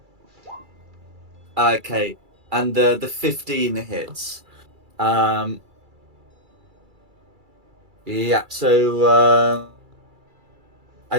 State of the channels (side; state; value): left; late; 2.3 ms